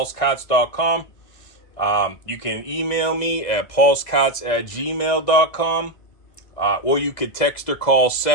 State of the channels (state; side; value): late; right; 2.0 ms